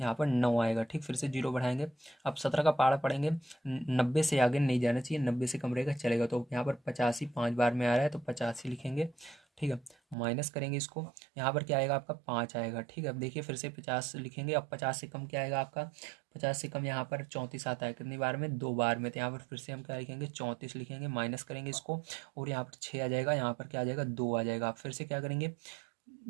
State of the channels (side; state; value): left; drops out; at 10.2 s